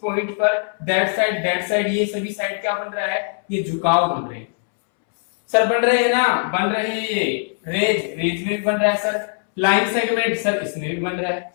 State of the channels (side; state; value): right; silent; 65 dB below the other